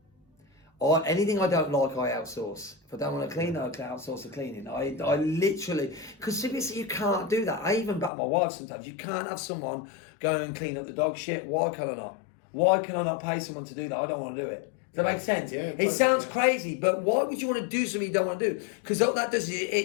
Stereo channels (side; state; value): right; drops out; at 8.1 s